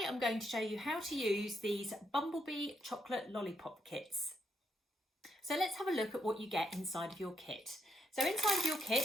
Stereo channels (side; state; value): both; normal; correlation 0.78